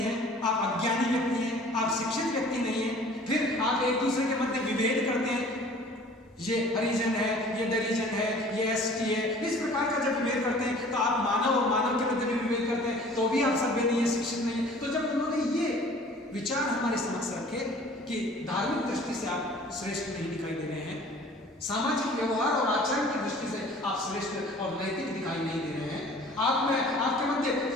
हैं, आप अज्ञानी व्यक्ति हैं, आप शिक्षित व्यक्ति नहीं हैं। फिर आप एक दूसरे के मध्य विभेद करते हैं, ये हरिजन है, ये दरिजन है, ये एसटी है, इस प्रकार का जब विभेद करते हैं तो आप मानव और मानव के मध्य भी विभेद करते हैं, तो भी आप सभ्य नहीं है, शिक्षित नहीं है। तो जब उन्होंने ये विचार हमारे समक्ष रखे कि धार्मिक दृष्टि से आप श्रेष्ठ नहीं दिखाई दे रहे हैं, सामाजिक व्यवहार और आचरण की दृष्टि से आप श्रेष्ठ और नैतिक दिखाई नहीं दे रहे हैं, आप में आपके मध्य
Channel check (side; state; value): both; normal; correlation 0.49